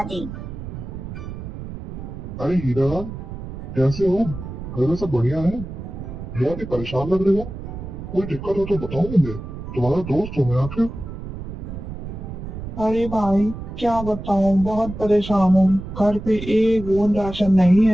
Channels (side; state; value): right; noise; rumble, 9 dB below the sound